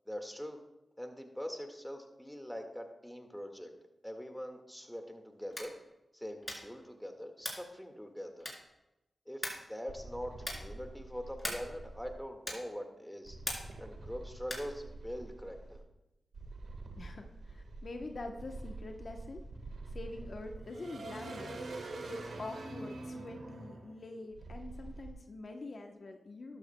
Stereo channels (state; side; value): normal; both; correlation 0.95